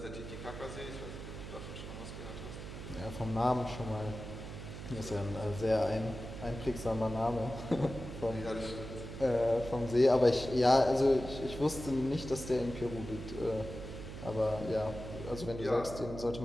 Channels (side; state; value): right; noise; hum, 10 dB below the sound